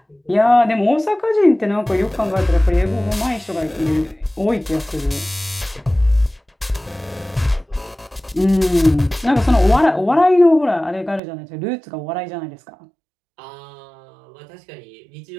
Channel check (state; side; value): drops out; left; at 11.2 s